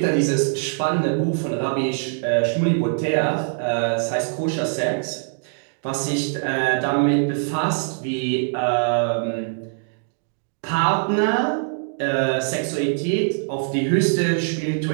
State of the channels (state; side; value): silent; left; digital silence